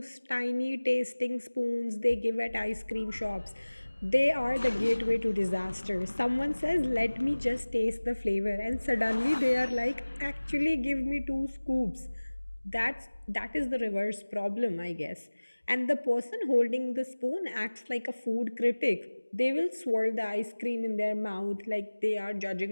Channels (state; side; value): inverted; both; correlation -1.00